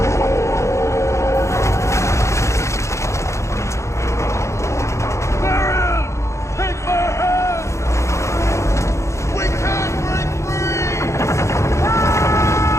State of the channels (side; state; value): right; late; 0.14 ms